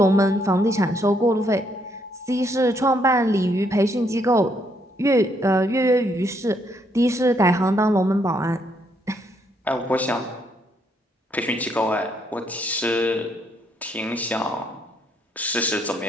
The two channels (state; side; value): normal; both; correlation 0.72